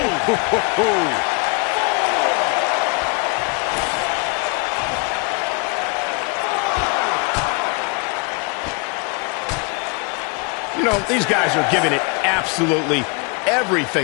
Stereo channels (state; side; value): quieter; right; 32.7 dB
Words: Boom! You know, these guys are giving it absolutely